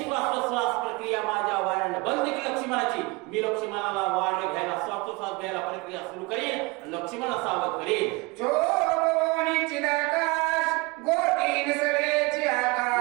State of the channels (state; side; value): quieter; left; 25.0 dB